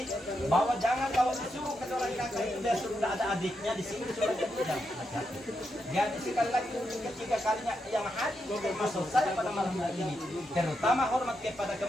bahwa jangan kalau disuruh ke seorang kakak itu dia sudah ada adiknya di sini sudah jangan hati-hati. Jadi sekali lagi ketiga kalinya yang hadir termasuk saya pada malam hari ini, terutama hormat kepada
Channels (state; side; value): normal; both; correlation 0.84